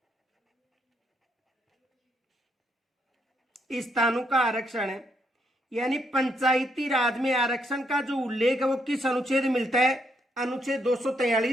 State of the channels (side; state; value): both; normal; correlation 0.76